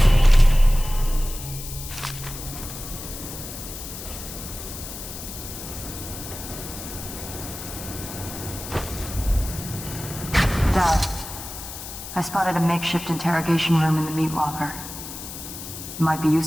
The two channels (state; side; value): noise; left; hiss, 10 dB below the sound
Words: Dad, I spotted a makeshift interrogation room in the meat locker. It might be